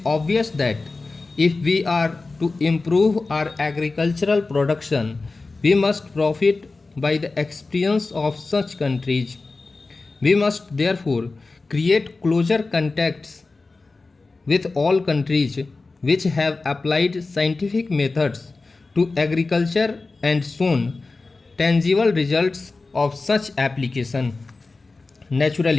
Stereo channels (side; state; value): right; quieter; 3.7 dB